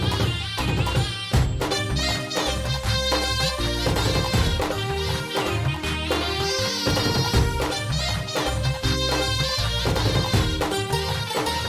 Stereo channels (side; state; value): both; identical; correlation 1.00